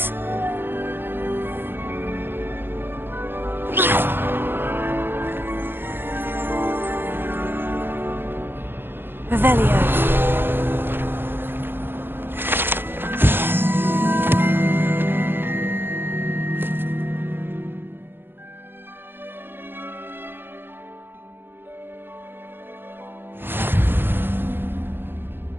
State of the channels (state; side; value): late; left; 0.10 ms